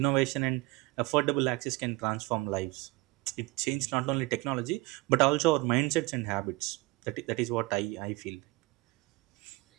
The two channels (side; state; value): left; quieter; 22.7 dB